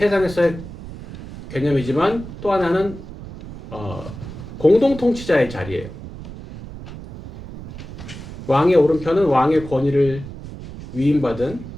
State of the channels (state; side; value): noise; right; rumble, 13 dB below the sound